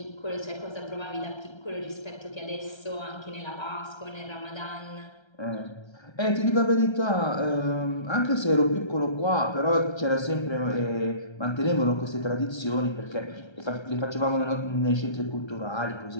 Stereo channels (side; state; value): right; late; 1.3 ms